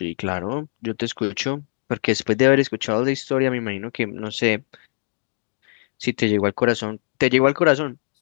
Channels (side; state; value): right; silent; digital silence